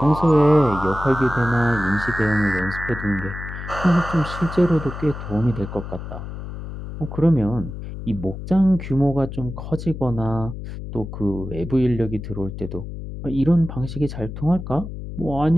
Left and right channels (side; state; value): left; noise; hum, 9 dB below the sound